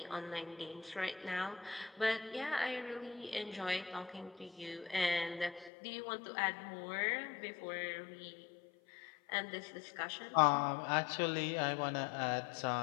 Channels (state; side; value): drops out; right; at 5.7 s